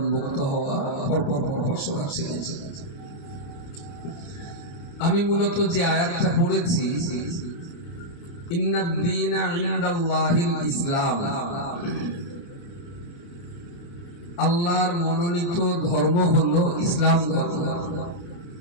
হওয়া পরপর সূরা ছিল। আমি মূলত যে আয়াতটা পড়েছি, ইন্নাদ দীনা ইনদাল্লাহিল ইসলাম, আল্লাহর মনোনীত ধর্ম হলো ইসলাম ধর্ম।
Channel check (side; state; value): right; late; 29 ms